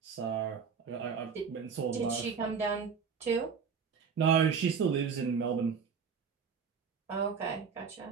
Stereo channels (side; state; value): left; quieter; 6.2 dB